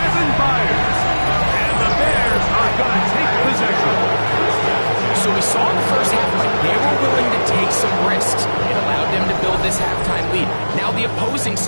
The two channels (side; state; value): both; inverted; correlation -1.00